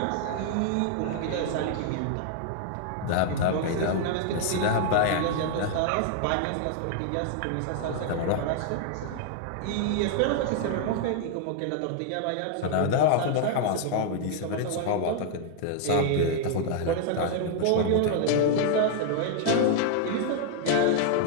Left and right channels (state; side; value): different; both; correlation -0.01